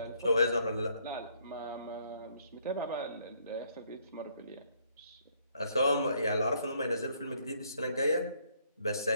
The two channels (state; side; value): inverted; both; correlation -0.68